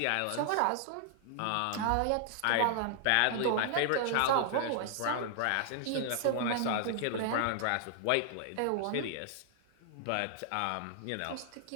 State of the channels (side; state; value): both; different; correlation -0.01